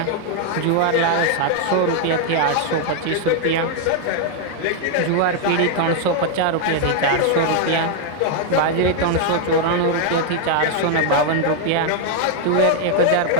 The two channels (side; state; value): both; different; correlation 0.00